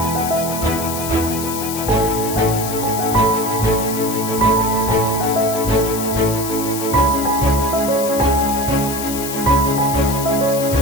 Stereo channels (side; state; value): left; noise; hiss, 7 dB below the sound